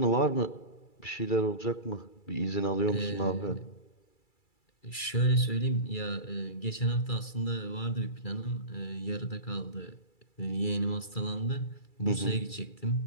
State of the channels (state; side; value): late; right; 2.3 ms